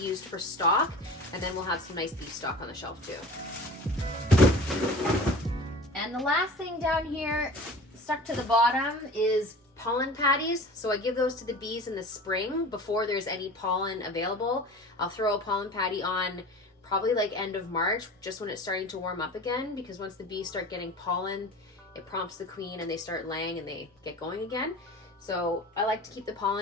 for stock. And then we'll have some nice beef stock on the shelf too. And the last thing down here, stuck to the bottom, is pollen patties. So I give those to the bees in the spring before there's any pollen available. I'll throw a pollen patty on probably like end of March, just when it's starting to warm up again, because once the bees start getting pollen, it prompts the queen and they start laying and they get going again. So I like to keep the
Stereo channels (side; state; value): both; normal; correlation 0.39